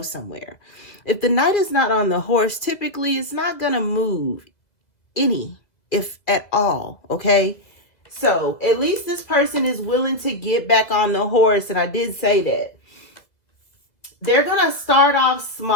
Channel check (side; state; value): right; late; 2.0 ms